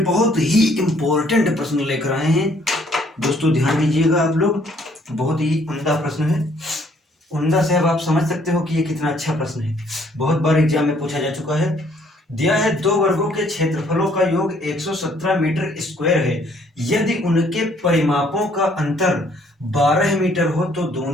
बहुत ही इम्पोर्टेंट प्रश्न लेकर आए हैं। दोस्तों ध्यान दीजिएगा, आप लोग, बहुत ही उम्दा प्रश्न है। उम्दा से अब आप समझ सकते हो कि ये कितना अच्छा प्रश्न है। बहुत बार एग्जाम में पूछा जा चुका है। दिया है दो वर्गों के क्षेत्रफलों का योग 117 मीटर स्क्वायर है। यदि उनके परिमापों का अंतर 12 मीटर हो तो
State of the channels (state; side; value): normal; both; correlation 0.63